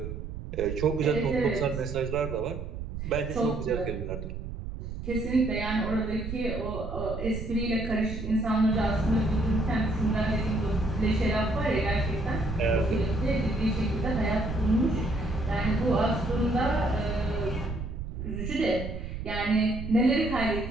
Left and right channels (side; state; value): right; noise; rumble, 7 dB below the sound